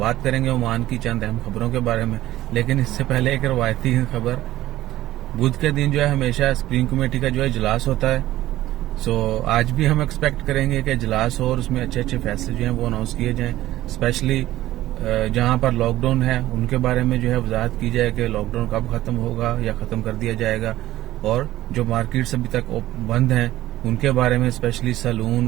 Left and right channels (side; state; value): left; quieter; 15.1 dB